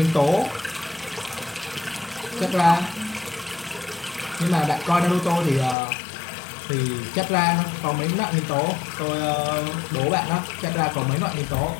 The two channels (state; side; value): drops out; right; at 5.8 s